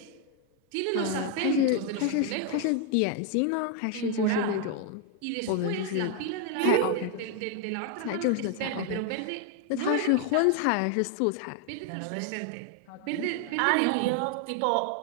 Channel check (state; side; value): different; both; correlation 0.01